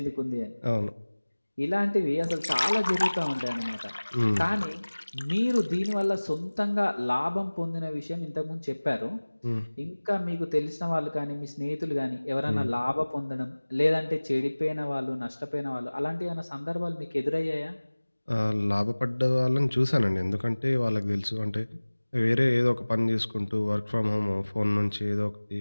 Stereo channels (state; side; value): inverted; both; correlation -1.00